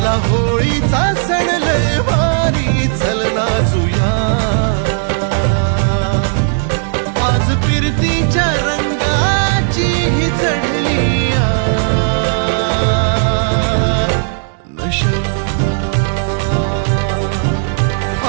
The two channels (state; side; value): silent; left; digital silence